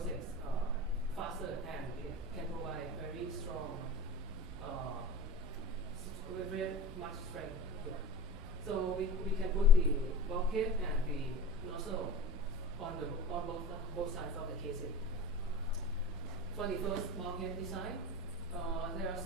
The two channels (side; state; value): both; normal; correlation 0.35